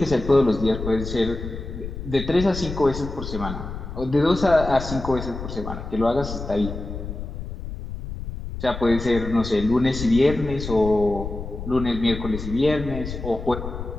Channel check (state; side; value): noise; left; rumble, 8 dB below the sound